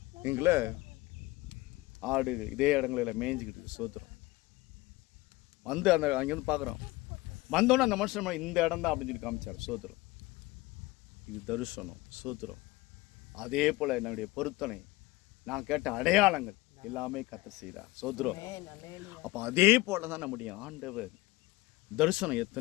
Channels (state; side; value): quieter; right; 20.3 dB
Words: எங்களை ஆடு இதே இடங்களில் மேய்ஞ்சிக்கிட்டு. ஸ்தோத்திரம். வந்து அங்கேருந்து பார்க்குறோம். வந்தோன்னே அந்த மனுஷன் இந்த இடம் தான் அப்படின்னு சொல்லி காமிச்சார். ஸ்தோத்திரம். இது தரிசனம். ஸ்தோத்திரம். அதே போல் என்னுடைய பொருத்தனை, நான் கேட்ட அடையாளங்கள் எல்லாமே கர்த்தர் செய்தார். சோத்ரம். அப்போ அதே போல தான் நம்முடைய ஆண்டவர் தரிசனம்